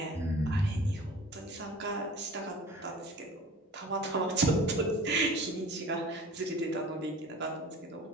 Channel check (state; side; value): normal; both; correlation 0.42